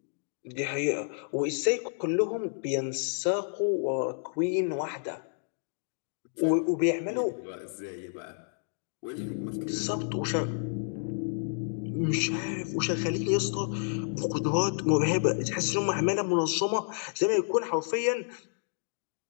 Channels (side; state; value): right; silent; digital silence